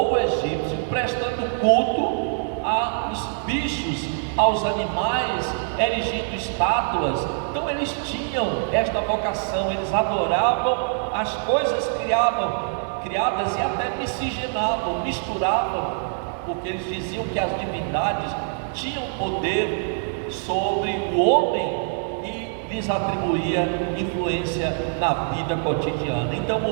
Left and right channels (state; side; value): silent; left; digital silence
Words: egípcio prestando culto aos bichos, aos animais, erigindo estátuas. Então eles tinham esta vocação, eles adoravam as coisas criadas e até miscigenavam, misturavam, porque eles diziam que as divindades tinham poder sobre o homem e lhes atribuía influência na vida cotidiana. Então